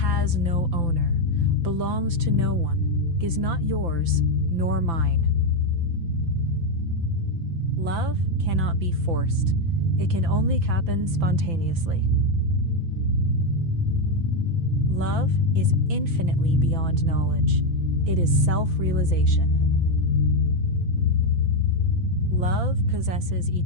no owner, belongs to no one, is not yours nor mine. Love cannot be forced. It can only happen spontaneously. Love is infinitely beyond knowledge. It is self-realization. Love possesses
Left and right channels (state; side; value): late; left; 5.9 ms